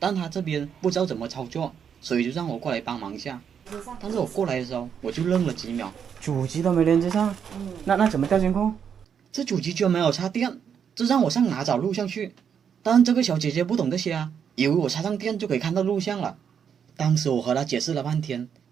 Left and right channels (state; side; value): quieter; left; 7.7 dB